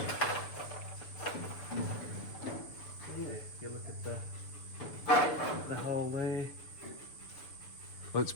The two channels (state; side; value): late; right; 6.9 ms